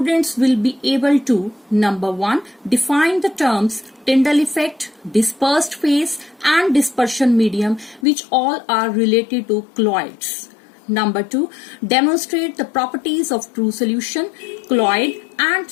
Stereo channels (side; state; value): right; drops out; at 8.1 s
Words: will be able to number 1, define the terms Tyndall effect, dispersed phase and dispersion medium, which all are related to colloids. Number 2, demonstrate the properties of true solution, colloid and